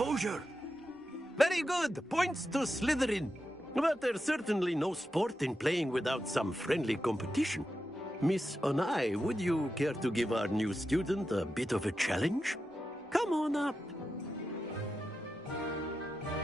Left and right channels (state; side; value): normal; both; correlation 0.89